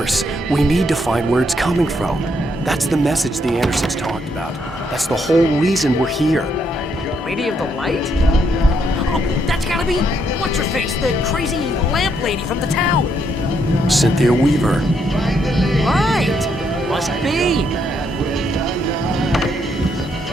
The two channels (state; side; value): normal; both; correlation 0.75